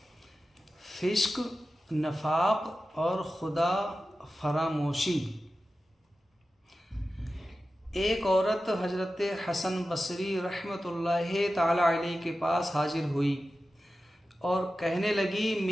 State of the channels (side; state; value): both; normal; correlation 0.93